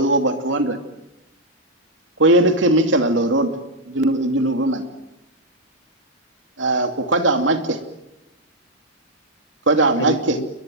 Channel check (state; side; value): normal; both; correlation -0.03